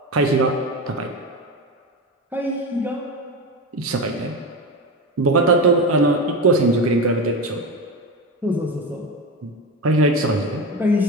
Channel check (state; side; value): normal; both; correlation 0.21